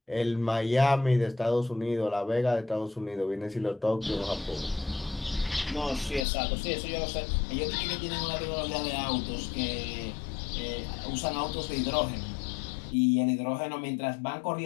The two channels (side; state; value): right; drops out; at 6.2 s